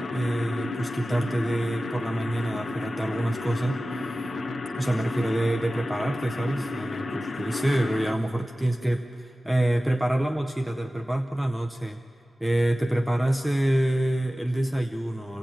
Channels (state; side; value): normal; both; correlation 0.96